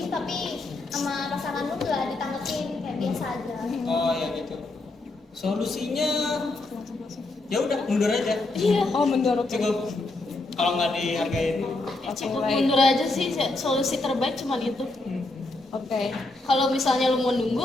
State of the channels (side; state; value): right; quieter; 3.0 dB